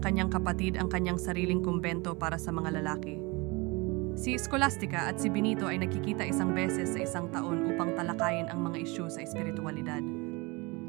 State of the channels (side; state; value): left; quieter; 26.3 dB